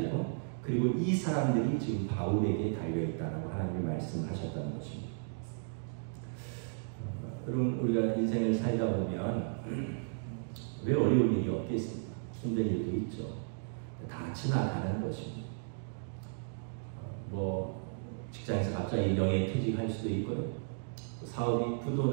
그리고 이 사람들이 지금 바울에게 달려있다라고 하나님이 말씀하셨다는 것입니다. 여러분 우리가 인생을 살다 보면 왜 어려운 일이 없겠습니까? 힘든 일도 있죠. 다 지나가는 것입니다. 직장에서 갑자기 명예퇴직할 수도 있고요. 사업이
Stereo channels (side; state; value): left; silent; digital silence